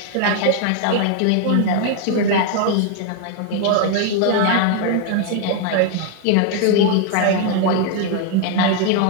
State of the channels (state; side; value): different; both; correlation 0.00